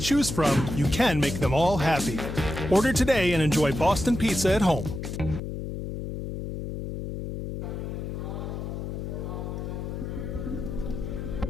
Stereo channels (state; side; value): noise; left; hum, 6 dB below the sound